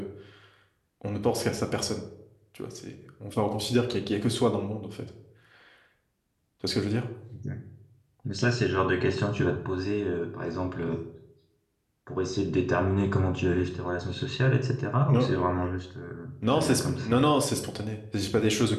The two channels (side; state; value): both; identical; correlation 1.00